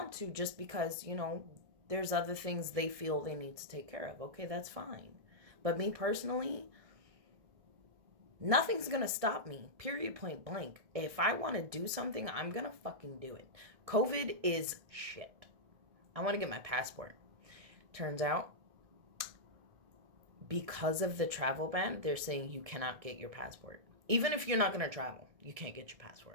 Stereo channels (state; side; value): late; left; 1.6 ms